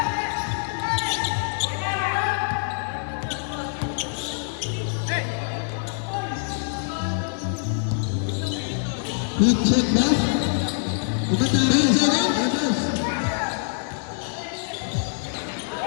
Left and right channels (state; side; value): silent; right; 61 dB below the other